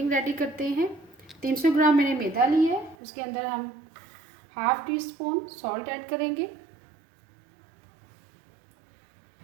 रेडी करते हैं। 300 ग्राम मैंने मैदा लिया है। उसके अंदर हम half teaspoon salt add करेंगे।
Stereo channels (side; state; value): left; drops out; at 3.0 s